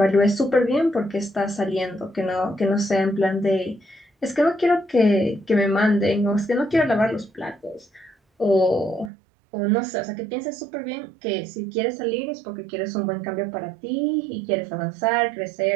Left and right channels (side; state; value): left; drops out; at 9.1 s